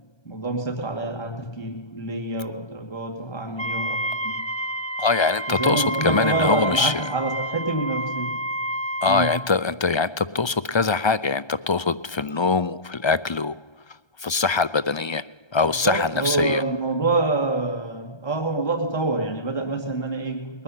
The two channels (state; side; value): late; right; 1.3 ms